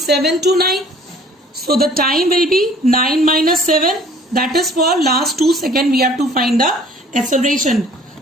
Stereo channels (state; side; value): normal; both; correlation 0.53